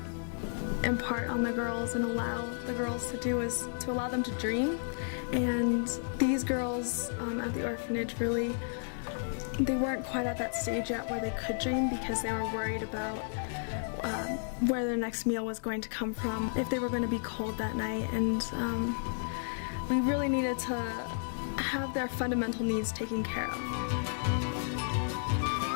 impart on the girls and allow the girls to do is to allow them to dream. And these girls at the orphanage really, they weren't quite at that stage yet where they could dream because they were worried about where their next meal was going to come from, if they were going to be cold that night, and we really needed to have their fundamental needs taken care of.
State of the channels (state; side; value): silent; right; digital silence